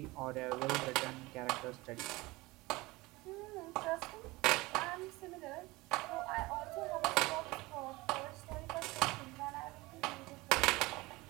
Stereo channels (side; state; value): left; quieter; 21.6 dB